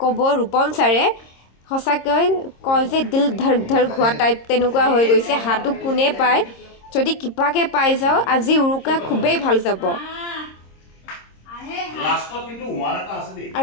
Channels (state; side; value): late; right; 26 ms